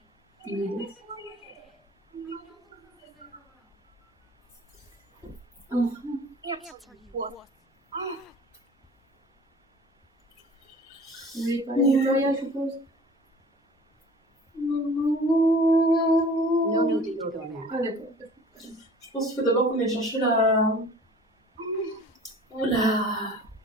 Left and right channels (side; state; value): both; normal; correlation 0.46